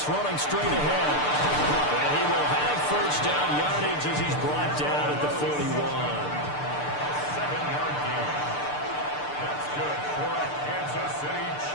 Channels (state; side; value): late; right; 6.8 ms